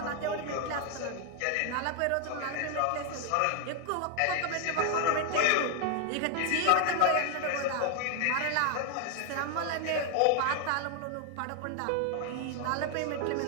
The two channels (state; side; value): different; both; correlation 0.00